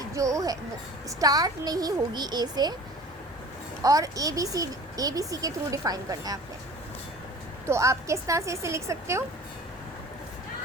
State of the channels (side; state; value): both; normal; correlation 0.42